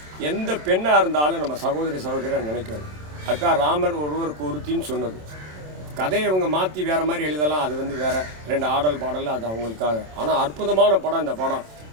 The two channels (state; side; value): late; left; 27 ms